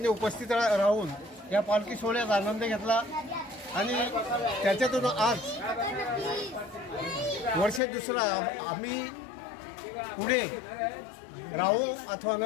उपस्थित राहून या पालखी सोहळ्याचा आनंद घेतला. आणि त्याच्यातून आज वर्ष दुसरा आम्ही पुढे राहू अथवा न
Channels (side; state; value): right; drops out; at 7.8 s